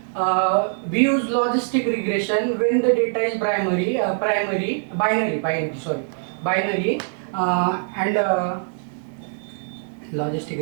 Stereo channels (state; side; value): silent; left; digital silence